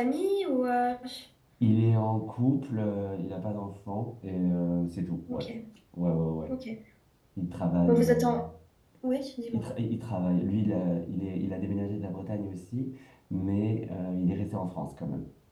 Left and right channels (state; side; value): identical; both; correlation 1.00